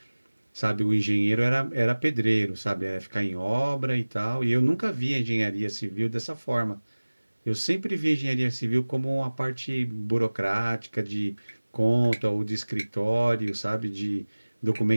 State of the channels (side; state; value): both; inverted; correlation -1.00